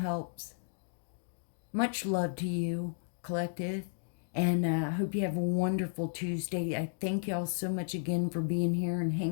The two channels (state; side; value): silent; right; digital silence